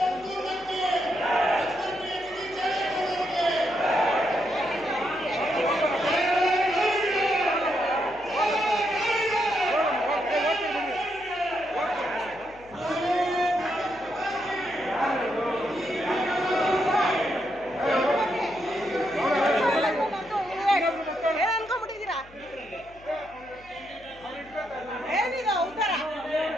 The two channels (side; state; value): left; noise; hum, 24 dB below the sound